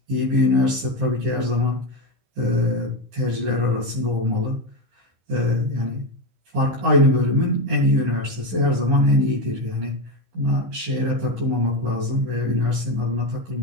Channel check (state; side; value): late; left; 15 ms